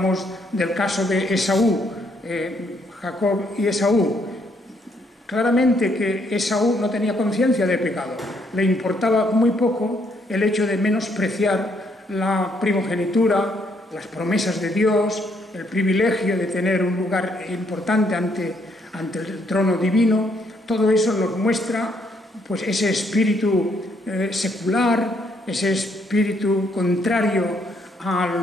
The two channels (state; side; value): normal; both; correlation 0.71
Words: del caso de Esaú, Jacob y Esaú. Claramente que Esaú no tenía conciencia de pecado, le importaba muy poco el hecho de menospreciar la primogenitura, las promesas de Dios, el privilegio de tener un lugar importante ante el trono divino. Todo eso nos muestra pues, ese espíritu secular, ese espíritu contrario a